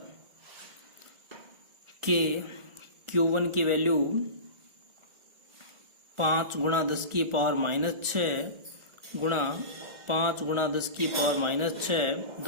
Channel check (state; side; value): late; left; 1.4 ms